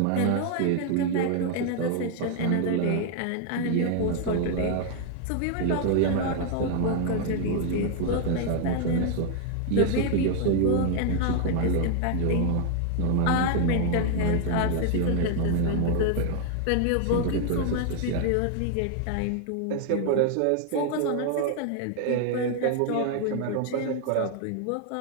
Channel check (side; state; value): both; different; correlation 0.00